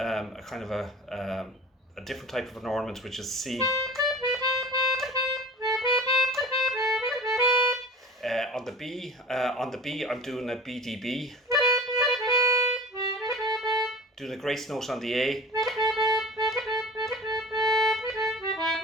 kind of a different type of an ornament, which is C. On the B, I'm doing a BDB. Doing a grace note on the A.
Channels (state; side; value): normal; both; correlation 0.39